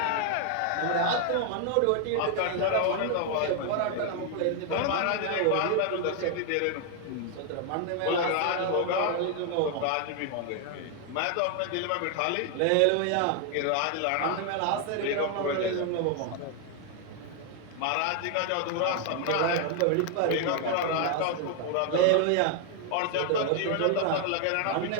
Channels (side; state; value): both; different; correlation 0.00